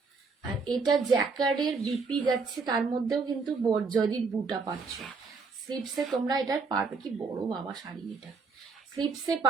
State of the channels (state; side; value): quieter; left; 4.5 dB